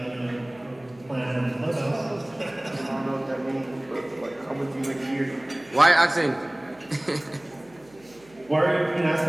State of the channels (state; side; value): noise; right; hum, 26 dB below the sound